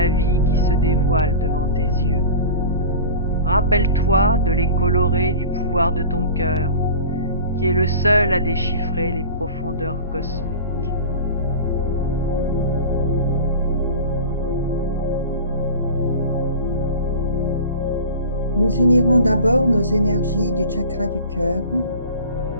vie qui se dévoilent devant tes yeux. Rappelle-toi de les colorer du pouvoir de ton cœur, qui est le seul à déchiffrer les profondeurs cosmiques. Nous unirons d'abord nos énergies du chakra du cœur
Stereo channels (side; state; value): both; inverted; correlation -0.37